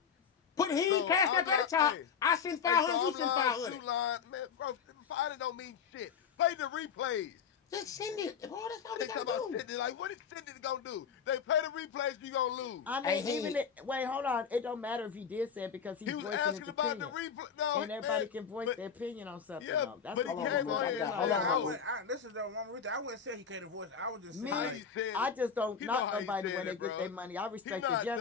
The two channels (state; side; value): quieter; right; 6.8 dB